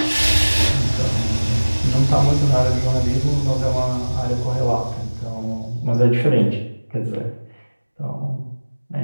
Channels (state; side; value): inverted; both; correlation -1.00